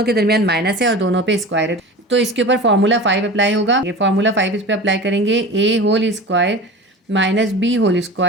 के दरमियान माइनस है और दोनों पे स्क्वायर है, तो इसके ऊपर फॉर्मूला 5 अप्लाई होगा। ये फॉर्मूला 5 इस पर अप्लाई करेंगे। a whole square minus b whole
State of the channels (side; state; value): both; normal; correlation 0.33